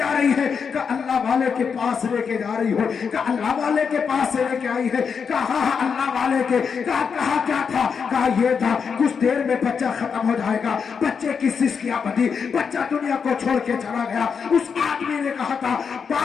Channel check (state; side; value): quieter; right; 6.2 dB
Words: رہی ہے؟ کہ اللہ والے کے پاس لے کے جا رہی ہو، کہ اللہ والے کے پاس سے لے کے آئی ہے؟ کہا اللہ والے کے، کہا کیا تھا؟ کہا یہ تھا کچھ دیر میں بچہ ختم ہو جائے گا۔ بچے کی سسکیاں بدھی، بچہ دنیا کو چھوڑ کے چلا گیا۔ اس آدمی نے کہا تھا،